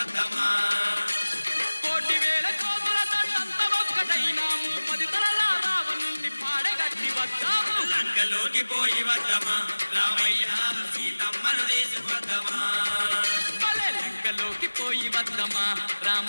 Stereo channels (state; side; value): inverted; both; correlation -1.00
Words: కోటి వేల కోతుల తంత ఒక్కటైనాము 10 తలల రావణుణ్ణి పాడగట్టి వద్దాము లంకలోకి పోయి వద్దమా రామయ్య సీతమ్మను తీసుకొద్దమా లంకలోకి పోయి వద్దమా